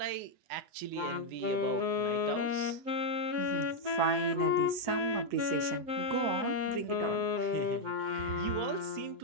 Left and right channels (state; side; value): late; left; 8.6 ms